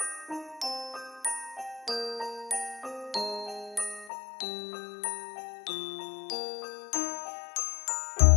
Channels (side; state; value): right; drops out; at 4.1 s